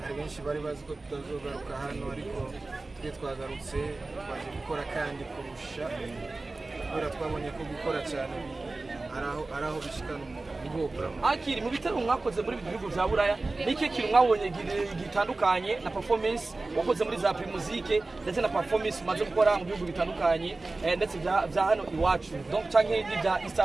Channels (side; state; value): left; quieter; 3.3 dB